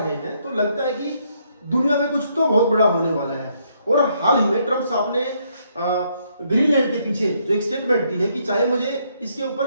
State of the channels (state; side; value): inverted; both; correlation -0.72